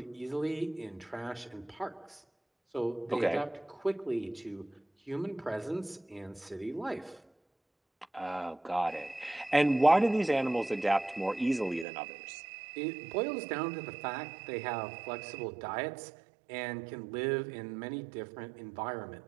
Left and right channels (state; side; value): drops out; left; at 11.9 s